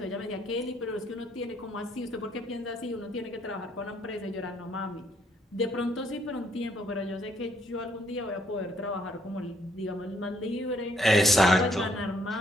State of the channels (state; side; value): normal; both; correlation 0.69